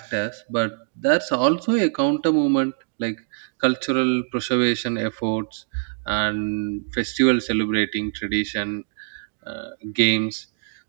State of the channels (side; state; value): left; silent; digital silence